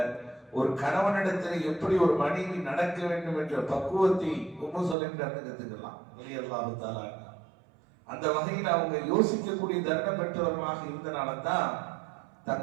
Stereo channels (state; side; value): drops out; left; at 5.0 s